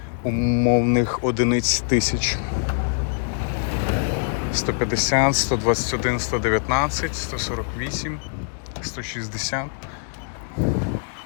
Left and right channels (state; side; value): silent; right; digital silence